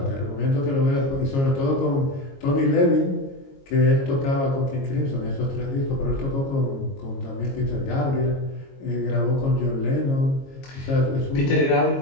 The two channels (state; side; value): late; right; 22 ms